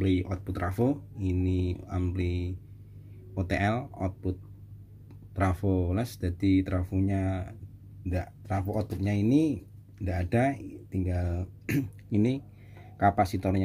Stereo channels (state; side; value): identical; both; correlation 1.00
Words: output trafo, ini ampli OTL output trafo les. Jadi trafo outputnya ini tidak ada, tinggal ini